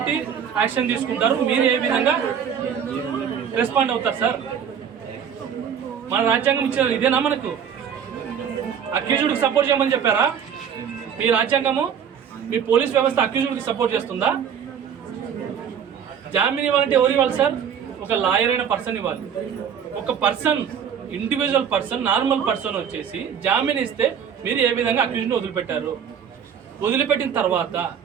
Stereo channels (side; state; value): left; quieter; 7.9 dB